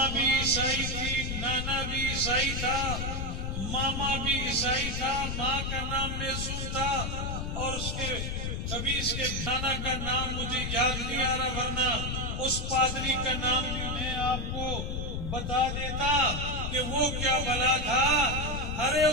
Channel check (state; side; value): noise; left; rumble, 3 dB below the sound